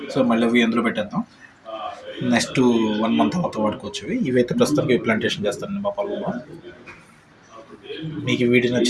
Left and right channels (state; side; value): identical; both; correlation 1.00